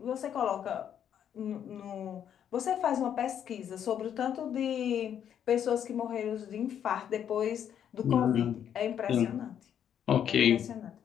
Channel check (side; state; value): right; quieter; 9.2 dB